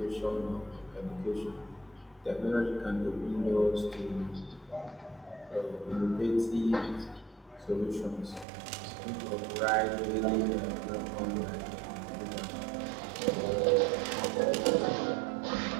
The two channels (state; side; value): drops out; left; at 8.5 s